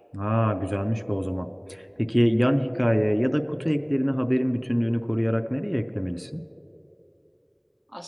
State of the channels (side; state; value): both; identical; correlation 1.00